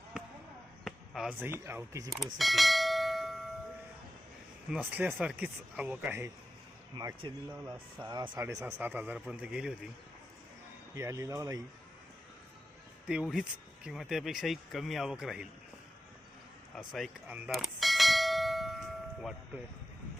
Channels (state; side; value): normal; both; correlation 0.92